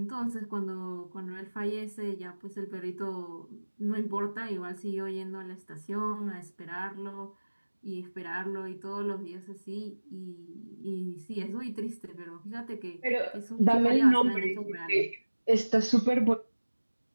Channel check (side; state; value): both; inverted; correlation -1.00